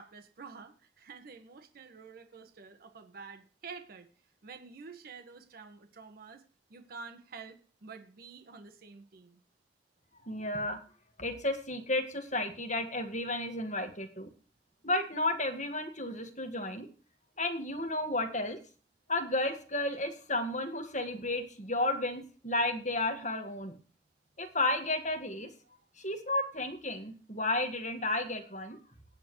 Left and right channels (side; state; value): both; normal; correlation -0.18